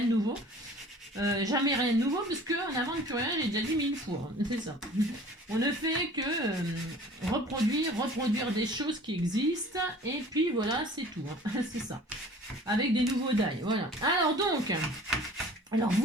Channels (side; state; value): both; normal; correlation 0.47